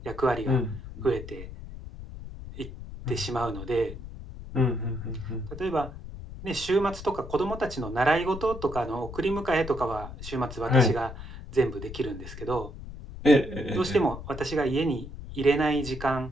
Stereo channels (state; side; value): noise; left; rumble, 11 dB below the sound